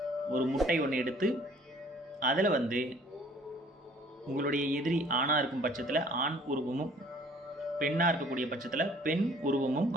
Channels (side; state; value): both; normal; correlation 0.55